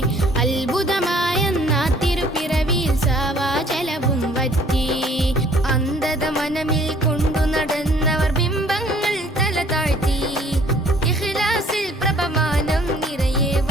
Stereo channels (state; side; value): normal; both; correlation 0.58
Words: അത്ഭുതമായെന്ന തിരുപ്പിറവിയിൽ സാവാജലവും വറ്റി. അന്ധത മനമിൽ കൊണ്ടു നടന്നവർ ബിംബങ്ങൾ തല താഴ്ത്തി. ഇഖ്ലാസിൽ പ്രഭമാനം നിറയെ